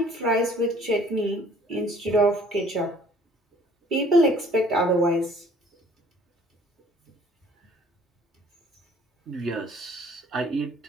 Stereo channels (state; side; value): normal; both; correlation 0.56